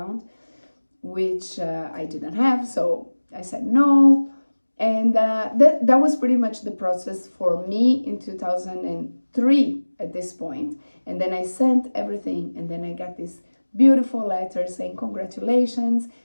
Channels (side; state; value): both; inverted; correlation -1.00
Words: which I didn't have, so I said no. And that was pretty much the process for me in 2003 at this point. And then I sent everything, and then I got this beautiful letter saying, congratulations,